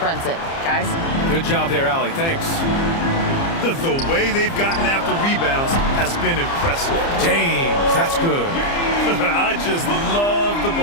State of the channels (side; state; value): right; late; 30 ms